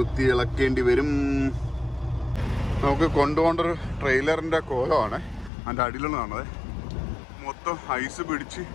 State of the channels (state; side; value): drops out; right; at 5.5 s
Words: ഇളക്കേണ്ടി വരും. നമുക്ക് കൊണ്ടുപോകേണ്ടൊരു ട്രെയിലറിന്റെ കോലമാണ്. അതിൻ്റെ അടിയിലുള്ളതാണത്. മൊത്തം ഐസ് പിടിച്ച്